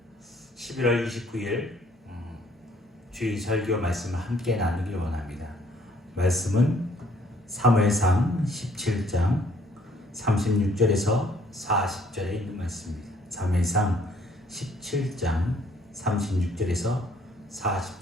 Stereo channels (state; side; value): normal; both; correlation 0.63